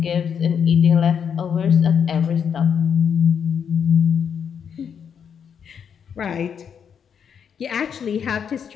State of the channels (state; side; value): quieter; right; 7.5 dB